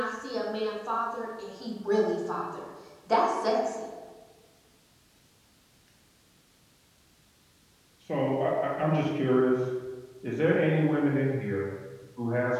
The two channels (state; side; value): identical; both; correlation 1.00